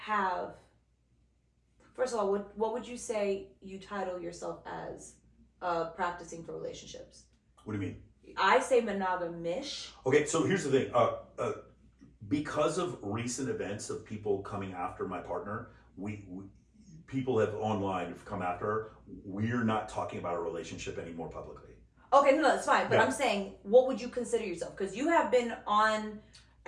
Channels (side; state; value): both; identical; correlation 1.00